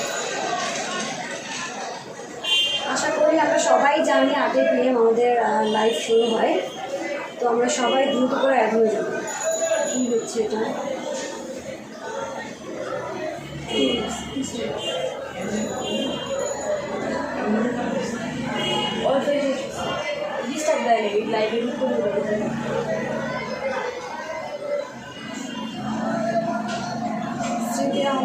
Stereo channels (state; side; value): identical; both; correlation 1.00